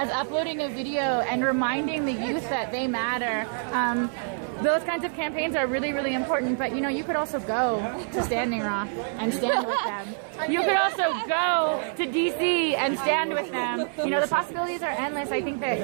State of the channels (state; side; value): silent; left; digital silence